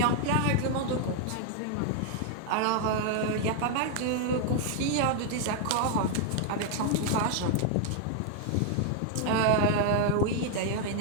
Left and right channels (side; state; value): both; different; correlation 0.00